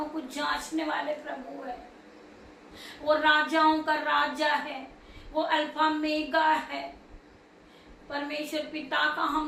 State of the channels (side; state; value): both; identical; correlation 1.00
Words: को जांचने वाले प्रभु है। वो राजाओं का राजा है, वो अल्फा मेगा है। परमेश्वर पिता का